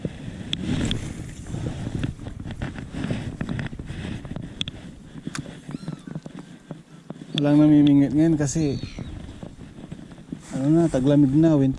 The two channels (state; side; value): identical; both; correlation 1.00